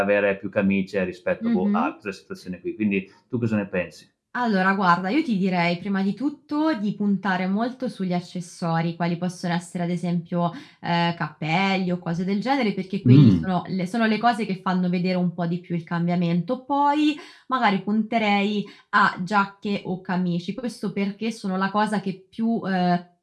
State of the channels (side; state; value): both; identical; correlation 1.00